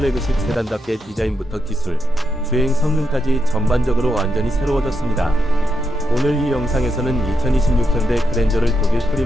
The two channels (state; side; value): normal; both; correlation 0.83